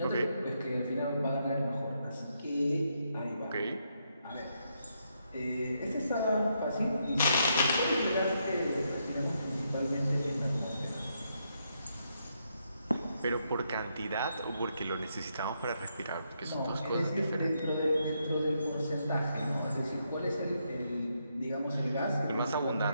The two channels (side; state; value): both; inverted; correlation -0.79